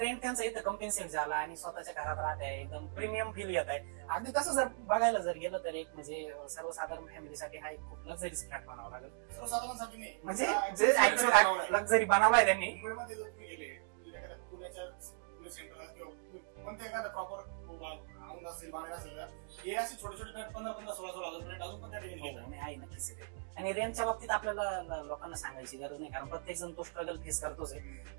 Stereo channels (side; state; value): left; silent; digital silence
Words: त्यांचा इथं कम्पेन्सेट झाला आणि स्वतःच्या घरात राहत आहे, एकदम प्रीमियम फील येत आहे. अगदी तसं जर बघायला जर गेलं तर एक म्हणजे सर्वसाधारण फॅमिलीसाठी हा एक खूप लक्झरीज फ्लॅट बनावा लागेल. सर्वसाधारणसाठी नाही, म्हणजे जे ऍक्च्युअल लक्झरी बनवलाय त्यांनी. मुंबईमध्ये जर तुम्ही गेले पुण्याच्या सेंटरला किंवा कोणत्या एखादा प्रॉपर औंध असेल, बाणेर असेल, हे असे छोटे छोटे फ्लॅट 15,000-16,000 फ्लॅट अजून पण त्या ठिकाणी आहे नक्कीच. आणि रेंटच्या बाबतीत आपल्याला लोकांना सांगायची गरज नाही, कारण प्रत्येक जण तो स्ट्रगल फेस करतोच आहे.